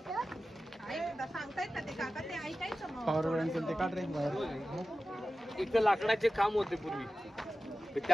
पॉवर बँक ते काढ रे बाहेर. एक लाकडाचे खांब होते पूर्वी.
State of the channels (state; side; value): normal; both; correlation 0.94